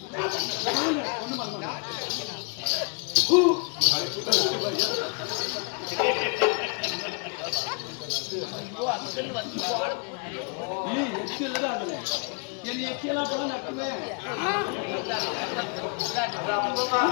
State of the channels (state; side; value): quieter; right; 36.7 dB